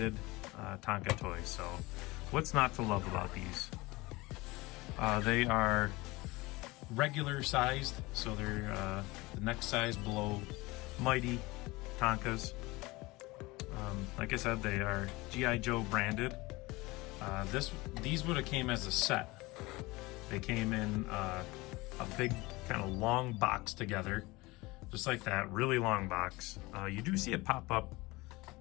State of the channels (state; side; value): quieter; right; 22.0 dB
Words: Tonka toys. So what's not to love about these? They are regular sized, so they're the next size below Mighty Tonkas. Like I said, they are G.I. Joe branded. These would have came as a set. They came in a big kind of long box together, just like that, really long box. You do see it pop up